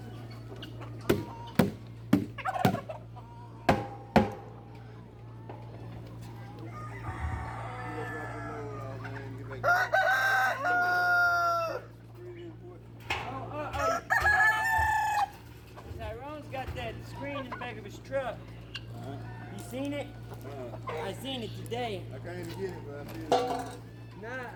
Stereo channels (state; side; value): identical; both; correlation 1.00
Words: Tyrone's got that screen in the back of his truck. You seen it? I seen it today. I can't even get it, but I see it.